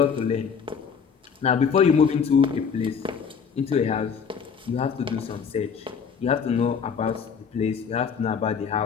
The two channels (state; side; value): quieter; right; 6.4 dB